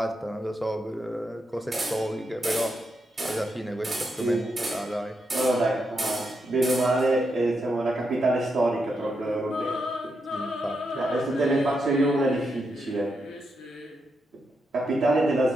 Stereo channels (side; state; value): both; normal; correlation 0.83